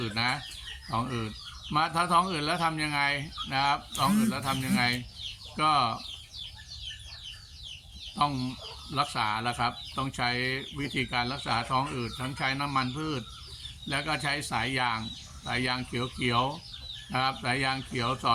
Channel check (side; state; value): both; identical; correlation 1.00